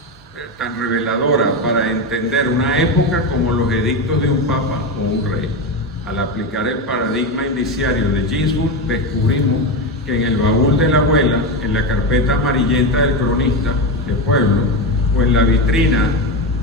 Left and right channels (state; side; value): normal; both; correlation 0.15